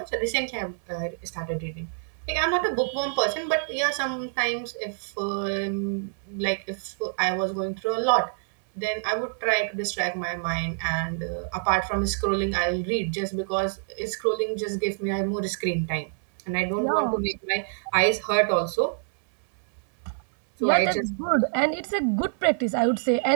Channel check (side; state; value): left; silent; 61 dB below the other